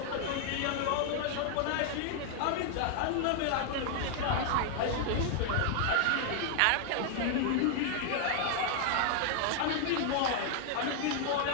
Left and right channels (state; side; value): different; both; correlation 0.00